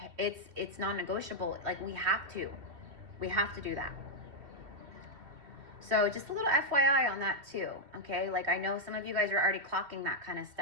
it's non-negotiable. Like we have to do that. So just a little FYI on that too. Okay. Like I know some of you guys are already clocking that kind of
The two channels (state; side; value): late; left; 2.6 ms